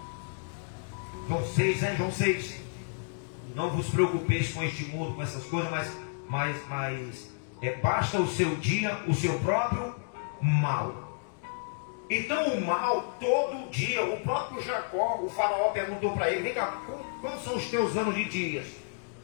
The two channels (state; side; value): silent; right; digital silence